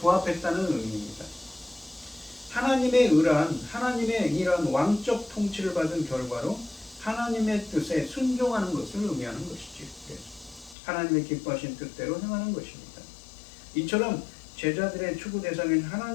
의미입니다. 하나님의 의란 하나님의 이런 왕적 통치를 받은 결과로 하나님의 뜻에 순종하는 것을 의미하는 것이지. 하나님의 기뻐하신 뜻대로 행하는 것입니다. 이처럼 제자들의 추구 대상인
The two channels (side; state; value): right; drops out; at 10.8 s